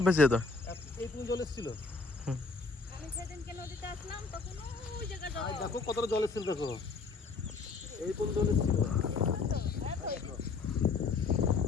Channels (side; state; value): right; quieter; 4.3 dB